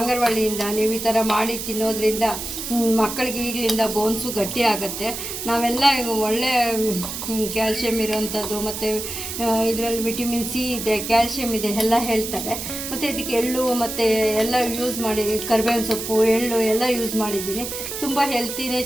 ನೀವು ಈ ಥರ ಮಾಡಿ ತಿನ್ನೋದ್ರಿಂದ ಮಕ್ಕಳಿಗೆ ಈಗಲಿಂದ ಬೋನ್ಸು ಗಟ್ಟಿ ಆಗುತ್ತೆ. ನಾವೆಲ್ಲ ಒಳ್ಳೆ ಕ್ಯಾಲ್ಶಿಯಮ್ ಇರೋವಂಥದ್ದು ಮತ್ತು ಇದರಲ್ಲಿ ವಿಟಮಿನ್ ಸಿ ಇದೆ, ಕ್ಯಾಲ್ಶಿಯಮ್ ಇದೆ ಎಲ್ಲ ಹೇಳ್ತಾರೆ. ಮತ್ತು ಇದಕ್ಕೆ ಎಳ್ಳು ಮತ್ತು ಎಲ್ಲ ಯೂಸ್ ಮಾಡಿ, ಕರಿಬೇವಿನ ಸೊಪ್ಪು, ಎಳ್ಳು ಎಲ್ಲ ಯೂಸ್ ಮಾಡಿದ್ದೀನಿ. ತುಂಬ ಹೆಲ್ತಿನೇ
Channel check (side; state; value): right; noise; hiss, 6 dB below the sound